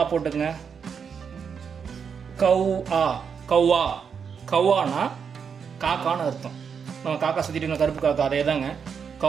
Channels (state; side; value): quieter; left; 6.6 dB